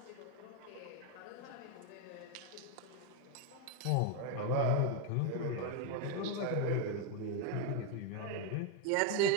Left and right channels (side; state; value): both; different; correlation 0.02